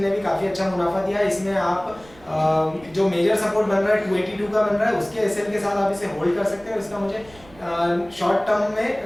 ने भी काफ़ी अच्छा मुनाफा दिया। इसमें आप जो मेजर सपोर्ट बन रहा है 282 का बन रहा है, उसके एसएल के साथ आप इसे होल्ड कर सकते हैं। इसका मुझे शॉर्ट टर्म में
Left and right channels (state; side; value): noise; right; rumble, 24 dB below the sound